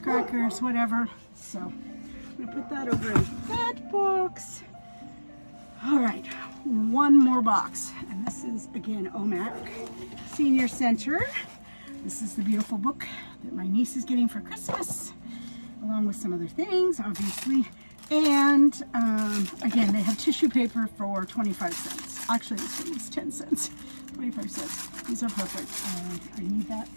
whatever. So I'm gonna put that over in that box. All right, one more box, and this is again OMAC Senior Center. This is the beautiful book that my niece is getting for Christmas, along with some other things, obviously. And again, they have tissue paper for 25 cents. Actually, this one is 10 cents, 25 cents. These are perfect. I need that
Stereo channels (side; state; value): both; inverted; correlation -1.00